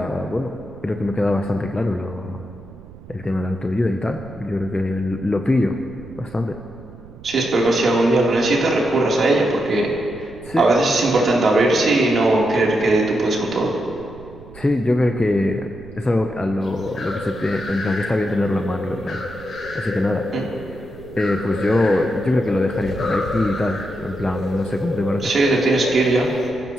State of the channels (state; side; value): noise; right; rumble, 19 dB below the sound